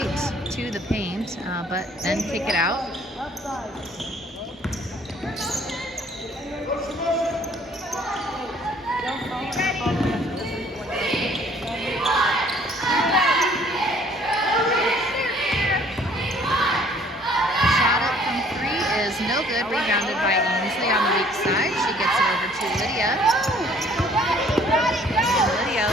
to the paint, but then kick it out. Shot up from 3 is is no good. Rebounded by Ainsley on the weak side. She gets it over to Lydia. And Lydia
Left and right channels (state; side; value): normal; both; correlation 0.58